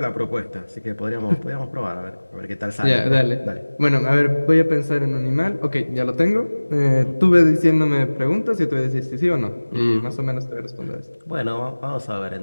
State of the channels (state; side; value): inverted; both; correlation -1.00